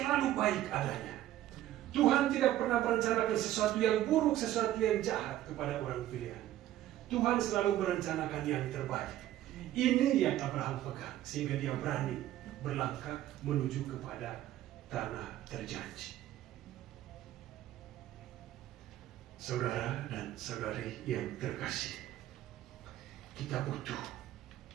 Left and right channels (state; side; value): quieter; left; 13.5 dB